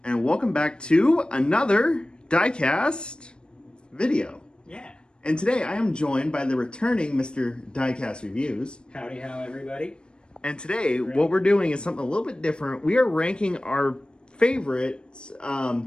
and welcome back to another diecast video. Yeah. And today I am joined by the returning Mr. Diecast Reviews. Howdy how, everybody. And today what we're doing is something a little bit different. We are ranking our favorite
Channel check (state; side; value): late; right; 0.053 ms